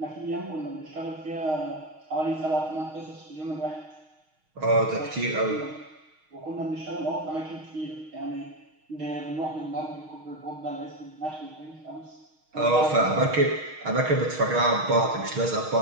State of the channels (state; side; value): late; left; 6.4 ms